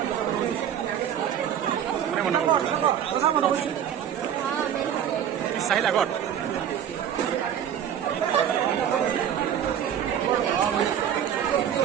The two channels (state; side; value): quieter; left; 9.5 dB